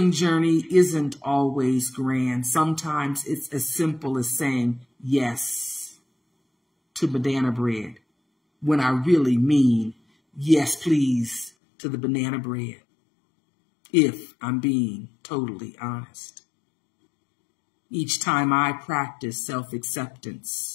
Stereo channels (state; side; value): drops out; right; at 11.5 s